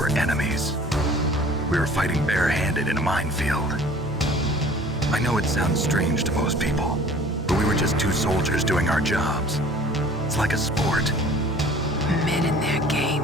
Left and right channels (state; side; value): normal; both; correlation 0.49